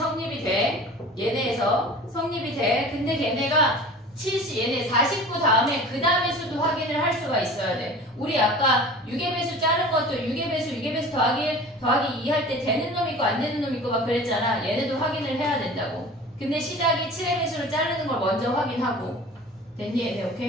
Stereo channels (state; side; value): normal; both; correlation 0.40